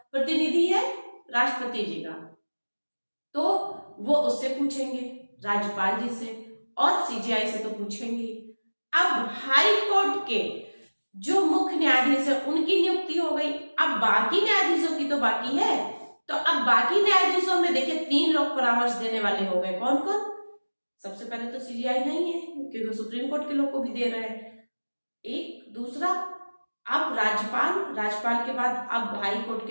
प्रतिनिधि है? राष्ट्रपति जी का। तो वो उससे पूछेंगे, राज्यपाल जी से, और सीजीआई से तो पूछेंगे। अब हाई कोर्ट के जो मुख्य न्यायाधीश है उनकी नियुक्ति हो गई, अब बाकी न्यायाधीशों की तो बाकी है। तो अब बाकी न्यायाधीशों में देखिए 3 लोग परामर्श देने वाले हो गए। कौन कौन? सबसे पहले तो सीजीआई नहीं है, क्योंकि सुप्रीम कोर्ट के लोग को भी दे रहे हैं। एक दूसरा, अब राज्यपाल के बाद अब हाई कोर्ट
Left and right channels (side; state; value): both; inverted; correlation -1.00